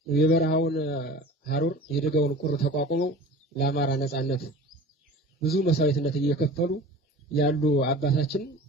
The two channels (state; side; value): normal; both; correlation 0.39